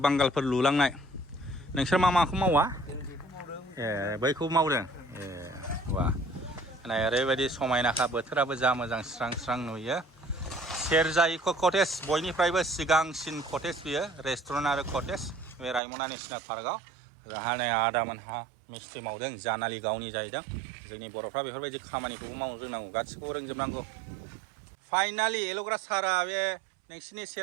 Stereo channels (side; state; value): left; drops out; at 15.8 s